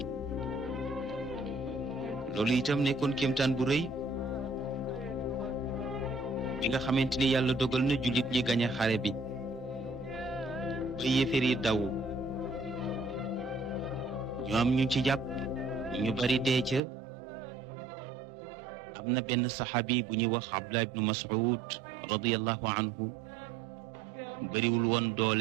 loolu itam nekkoon kéemtaan bu rëy bi nga xamante ni yàlla dogal na jullit ñi gañe xare bi ba yéeféer yi daw ñu am ñu ci jàpp ñu bari dee ca am na benn saxaabi bu ñuy wax Abdullah ibnu Mas'ud radiyallahu anhu bariwul woon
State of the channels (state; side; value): drops out; left; at 16.8 s